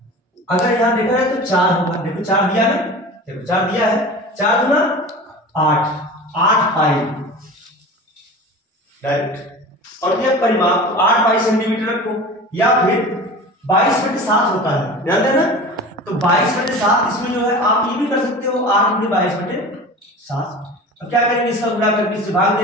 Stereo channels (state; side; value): normal; both; correlation 0.35